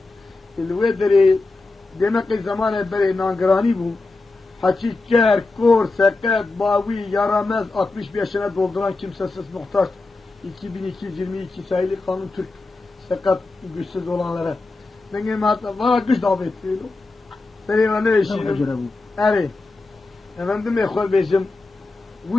الويدري دمقي زمان بري نانگراني بو حكي كر كور سكت باوي يارامز 65 yaşına dolduran kimsesiz muhtaç 2222 sayılı kanun Türk sakat güçsüz olanlara benim hatta var güç davet ediyor benim ne işim evet efendim ekol bizim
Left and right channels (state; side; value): quieter; right; 3.4 dB